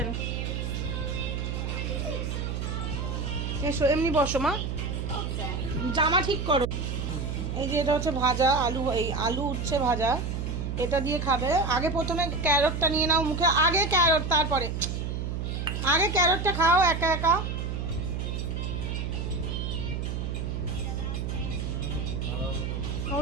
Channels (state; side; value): noise; right; hum, 3 dB below the sound